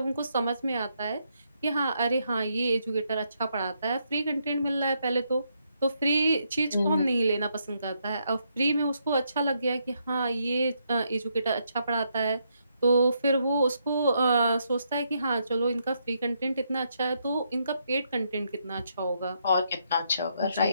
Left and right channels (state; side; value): inverted; both; correlation -0.77